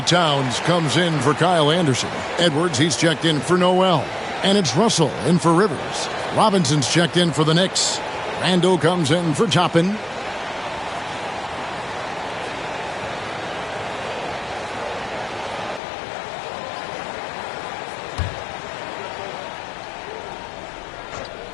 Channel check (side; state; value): right; drops out; at 15.8 s